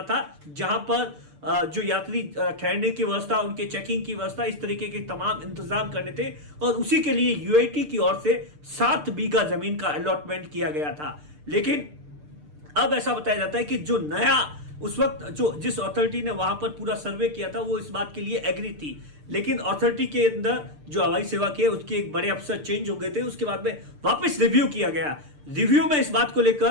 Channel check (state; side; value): late; left; 6.7 ms